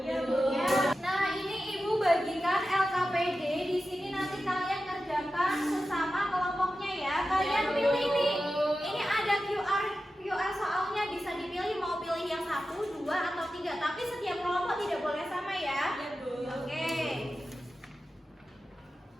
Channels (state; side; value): normal; both; correlation 0.92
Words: Bu. Ya. Nah, ini Ibu bagikan LKPD. Di sini nanti kalian kerjakan sesama kelompoknya ya. Kalian pilih nih. Ini ada QR soalnya, bisa dipilih mau pilih yang 1, 2, atau 3. Tapi setiap kelompok tidak boleh sama ya. Oke.